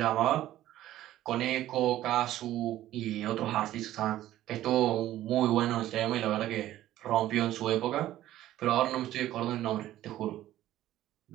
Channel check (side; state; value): left; quieter; 13.8 dB